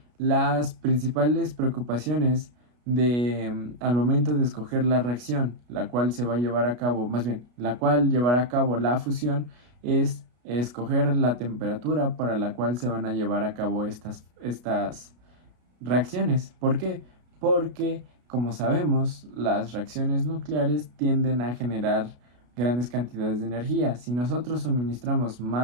las principales preocupaciones al momento de escoger la reacción, la cual se va a llevar a cabo, más bien, la cual llevará a cabo la fusión, es escoger la temperatura para la cual se van a llevar a cabo estas reacciones. ¿Por qué? Porque, como sabemos, las reacciones nucleares tienden a generar grandes cantidades de energía. Si nosotros suministramos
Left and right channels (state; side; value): late; left; 33 ms